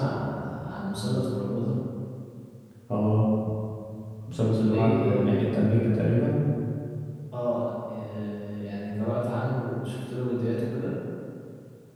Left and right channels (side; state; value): both; identical; correlation 1.00